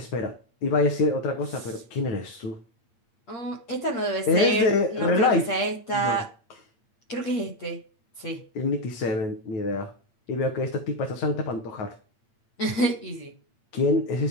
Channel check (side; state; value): right; late; 8.5 ms